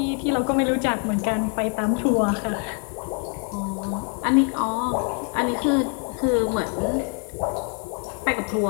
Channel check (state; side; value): quieter; right; 39.5 dB